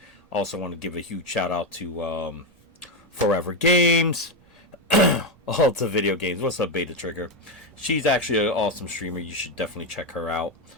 Also want to give a huge shout out to Forever Games. All the video games. What's up, Beta Trigger? She's actually an awesome streamer. You should definitely check her out.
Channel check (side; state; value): both; normal; correlation 0.08